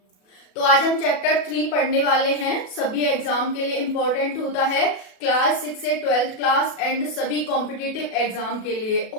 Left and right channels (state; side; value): late; right; 37 ms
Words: तो आज हम चैप्टर 3 पढ़ने वाले हैं। सभी एग्जाम के लिए इंपॉर्टेंट होता है, क्लास 6 से 12th क्लास एंड सभी कॉम्पिटिटिव एग्जाम के लिए।